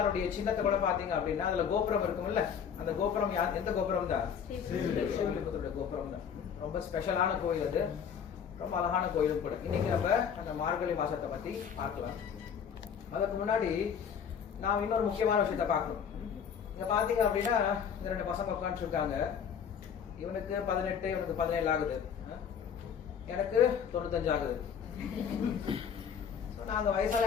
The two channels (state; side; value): quieter; right; 7.5 dB